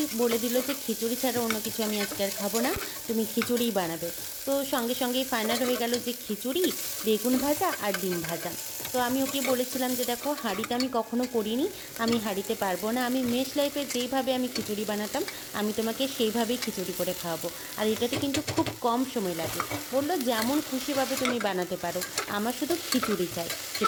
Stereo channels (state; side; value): identical; both; correlation 1.00